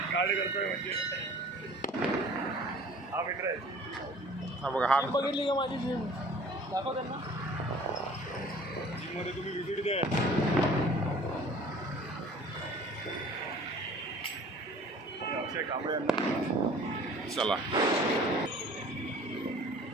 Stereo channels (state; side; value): normal; both; correlation 0.49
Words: काढ करतोय म्हणजे हा मित्र आहे. हा बघा हा बघितली का माझी जिम दाखव त्यांना. जिममध्ये तुम्ही व्हिजिट द्या. अक्षय कांबळे यांना चला